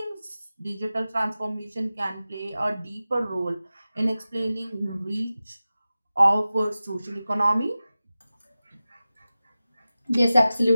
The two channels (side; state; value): both; inverted; correlation -0.95